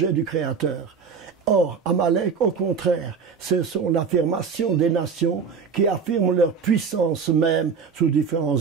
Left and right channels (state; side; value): quieter; left; 5.9 dB